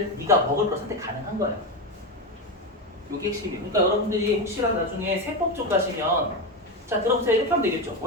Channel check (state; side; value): normal; both; correlation 0.15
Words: 네가 먹을 거 선택 가능한 거예요. 이게 핵심이에요. 그러니까 여러분들이 혹시라도 나중에 세법 쪽 가시면 자 들어보세요. 이렇게 하면 되겠죠.